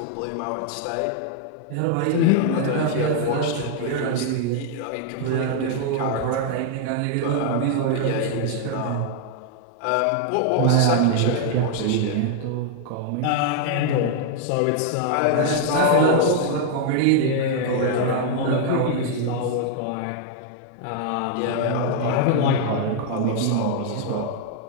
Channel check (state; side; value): different; both; correlation 0.00